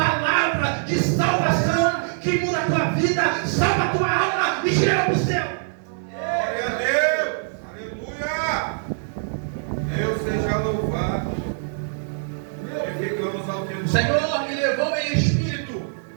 de salvação que muda a tua vida, salva a tua alma e te leva para o céu. Glória a Deus, aleluia. Deus seja louvado. Glorificamos ao teu nome. O Senhor me levou em espírito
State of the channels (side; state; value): left; silent; digital silence